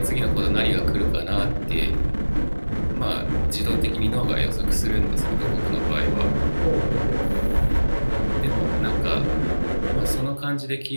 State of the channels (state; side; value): inverted; both; correlation -1.00